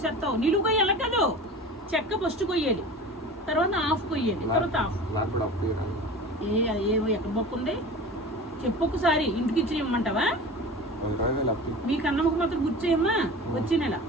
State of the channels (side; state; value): both; normal; correlation 0.36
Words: నిలువు కొయ్యాలి కదా, చెక్క ఫస్ట్ కొయ్యాలి, తర్వాత హాఫ్ కొయ్యాలి, తర్వాత హాఫ్. నాకు కూడా అప్పు ఏవో ఎక్కడ బొక్కు ఉంది చెప్పు ఒకసారి. ఇంటికి ఇచ్చి ఇమ్మంటావా? మీ కన్నమ్మకు మాత్రం గుర్తు చేయమ్మా. వచ్చే నెల